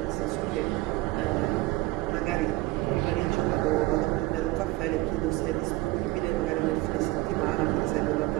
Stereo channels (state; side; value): quieter; left; 19.5 dB